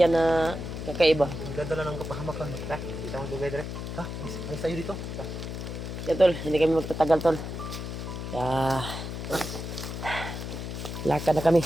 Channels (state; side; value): noise; left; hum, 6 dB below the sound